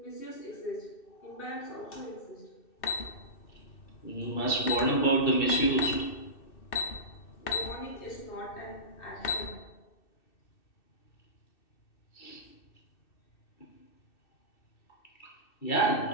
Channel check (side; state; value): right; late; 2.6 ms